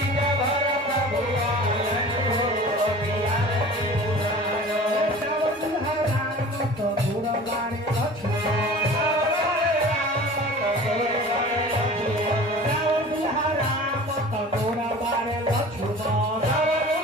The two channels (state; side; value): normal; both; correlation 0.41